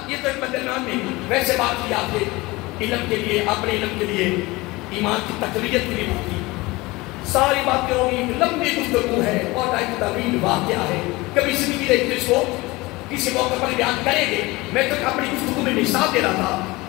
یہ تو ایک بدنام نہیں، ویسے بات کی آپ نے علم کے لیے، اپنے علم کے لیے، ایمان کی تقویت کے لیے بات کی. ساری باتیں ہوگی، لمبی گفتگو ہے اور ایک طویل واقعہ ہے، کبھی زندگی دیکھتے اس کو کسی موقع پر بیان کریں گے۔ میں تو اپنی گفتگو میں مثال دے رہا تھا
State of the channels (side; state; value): right; quieter; 21.8 dB